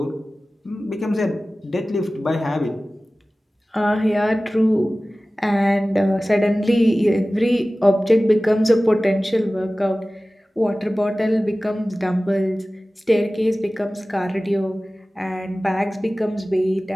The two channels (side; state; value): both; normal; correlation 0.97